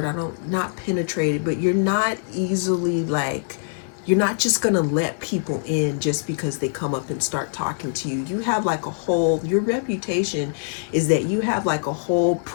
Not penetrated, but you're not easily, like, you're not just going to let people in just because they come up and start talking to you. You have like your reputation is that you have like a whole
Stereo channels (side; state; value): right; silent; digital silence